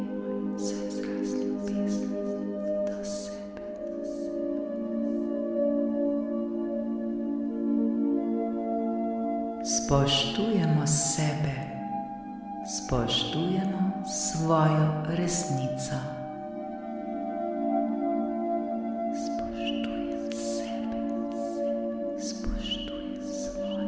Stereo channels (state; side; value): identical; both; correlation 1.00